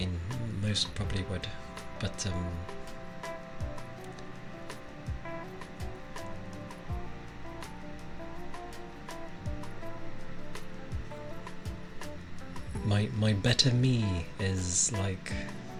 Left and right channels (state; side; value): identical; both; correlation 1.00